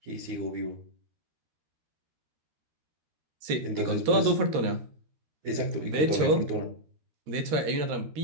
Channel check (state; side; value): late; left; 13 ms